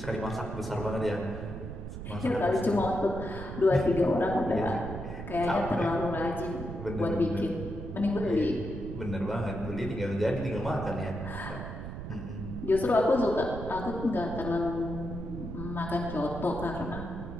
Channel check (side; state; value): right; noise; rumble, 8 dB below the sound